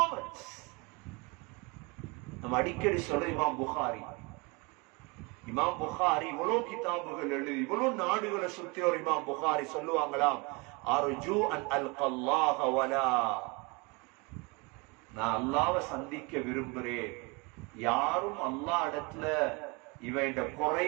நம்ம அடிக்கடி சொல்ற இமாம் புகாரி. இமாம் புகாரி இவ்வளவு கிதாபுகள் எழுதி இவ்வளவு நாடுகளை சுத்தி ஒரு இமாம் புகாரி சொல்லுவாங்களாம், அர்ஜு அன் அல்கல்லாஹ வலா, நான் அல்லாஹ்வை சந்திக்க விரும்புறேன். யாரும் அல்லாஹ் இடத்துல இவன்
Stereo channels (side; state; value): left; quieter; 28.3 dB